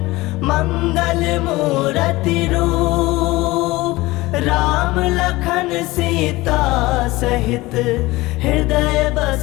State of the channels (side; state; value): right; quieter; 20.1 dB